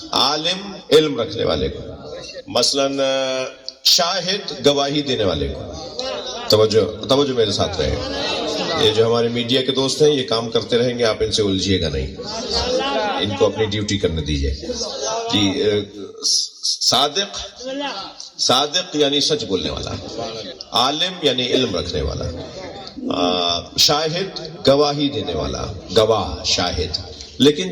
عالم علم رکھنے والے کو، مثلا شاہد گواہی دینے والے کو. توجہ میرے ساتھ رہے. یہ جو ہمارے میڈیا کے دوست ہیں یہ کام کرتے رہیں گے، آپ ان سے الجھیے گا نہیں، ان کو اپنی ڈیوٹی کرنے دیجیے. جی، صادق یعنی سچ بولنے والا، عالم یعنی علم رکھنے والا، شاہد گواہی دینے والا، گواہ شاہد. لیکن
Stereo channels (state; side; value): identical; both; correlation 1.00